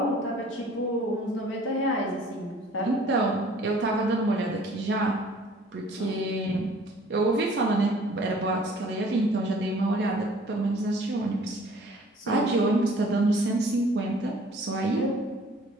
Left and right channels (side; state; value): both; normal; correlation 0.53